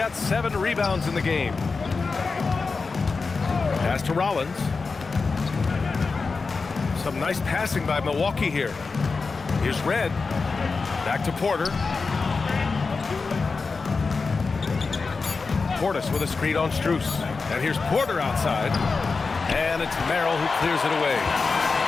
7 rebounds in the game. Pass to Rollins. Some nice passing by Milwaukee here. Here's Red. Back to Porter. Portis with a screen on Strus. And here's Porter outside. And it's Merrill who clears it away.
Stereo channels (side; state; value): right; quieter; 4.4 dB